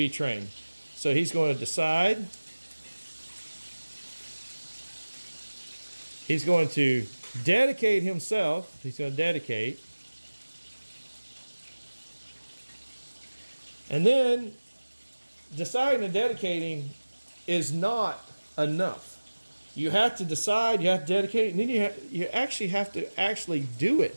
trained. So he's going to decide. He's going to dedicate himself. He's going to dedicate. And then deciding and dedicating is not enough. You have to decide, you have to dedicate, and then you actually have to actually do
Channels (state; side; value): inverted; both; correlation -1.00